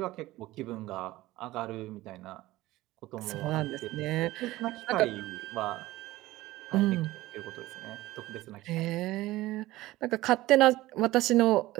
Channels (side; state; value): left; quieter; 17.5 dB